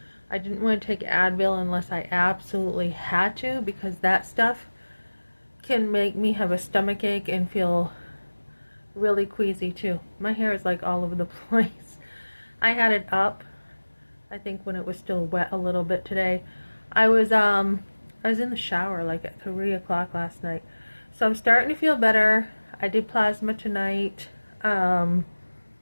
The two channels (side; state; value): both; inverted; correlation -1.00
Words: I didn't want to take Advil unless I absolutely had to because that stuff can make me have a stomach ache and feel really queasy too. My hair is like all over the place. I had it up, I think when it was still wet a little bit today. I was in the shower like at 3 o'clock last night. So I'm starting to feel better. I did plasma tonight. Um,